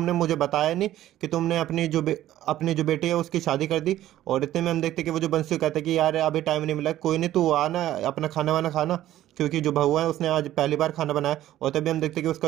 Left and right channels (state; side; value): quieter; left; 13.5 dB